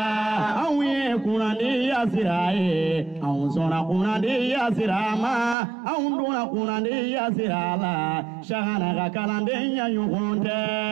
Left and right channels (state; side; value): drops out; left; at 5.6 s